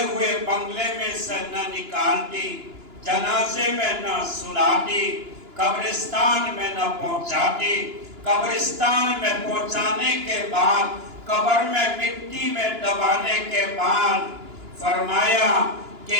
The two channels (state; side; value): late; left; 2.9 ms